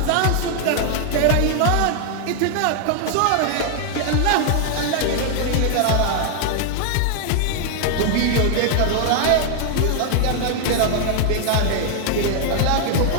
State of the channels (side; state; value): both; different; correlation 0.00